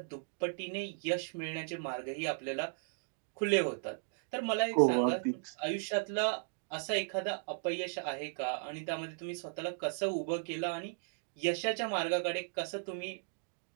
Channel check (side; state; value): left; silent; digital silence